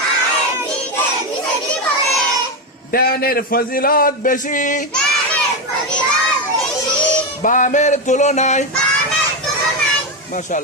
ডানের ফজিলত বেশি বামের তুলনায়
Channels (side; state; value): both; normal; correlation 0.11